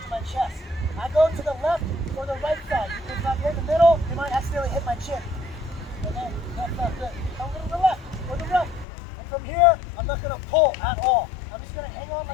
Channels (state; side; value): drops out; right; at 8.8 s